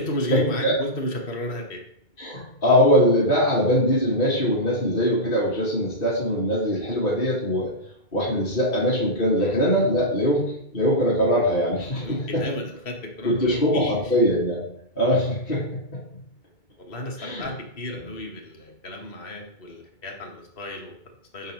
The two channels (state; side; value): late; right; 2.2 ms